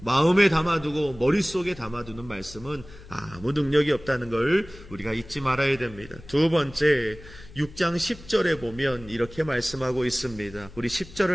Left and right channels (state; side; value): noise; left; hum, 18 dB below the sound